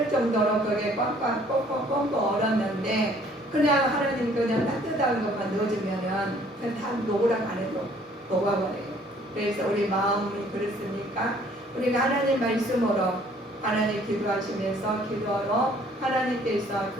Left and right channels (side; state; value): both; normal; correlation 0.59